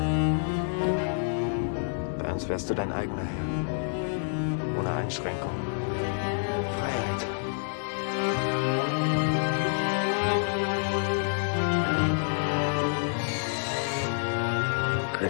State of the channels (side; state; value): right; silent; 59 dB below the other